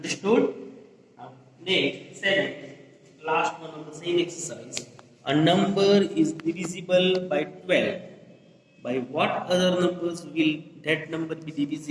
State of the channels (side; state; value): both; identical; correlation 1.00